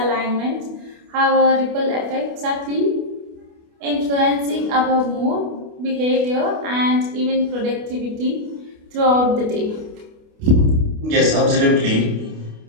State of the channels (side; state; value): left; late; 28 ms